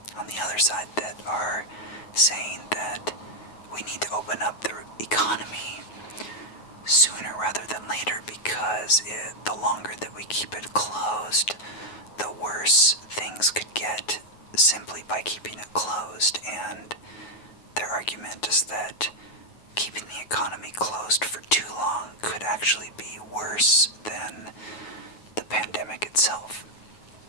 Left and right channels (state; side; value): late; right; 9.4 ms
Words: on the other side that are saying that we need to open up the economy sooner rather than later, because the longer that we keep it closed, the worse things could get simply by keeping it closed. And their argument is that keeping the economy closed for too long could actually be worse than the pandemic itself.